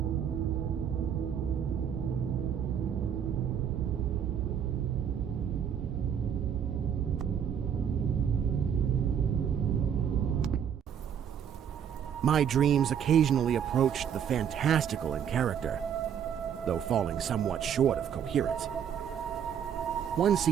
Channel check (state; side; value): quieter; left; 8.4 dB